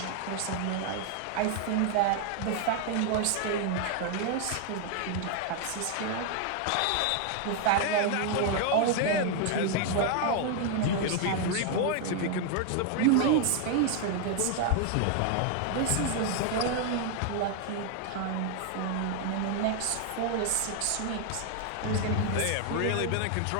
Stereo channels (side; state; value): both; different; correlation 0.00